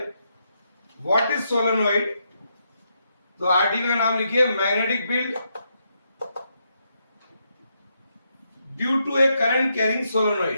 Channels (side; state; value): both; inverted; correlation -0.80